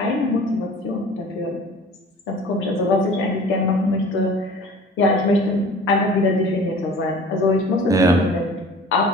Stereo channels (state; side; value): normal; both; correlation 0.44